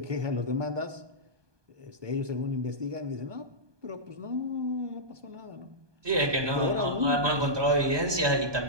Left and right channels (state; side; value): late; left; 1.2 ms